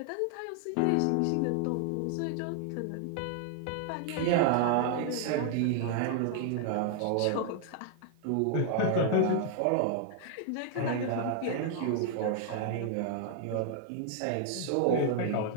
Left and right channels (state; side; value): different; both; correlation 0.00